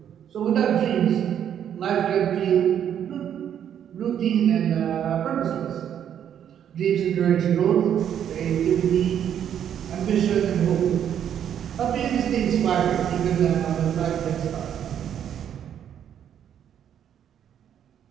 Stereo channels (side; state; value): left; quieter; 9.4 dB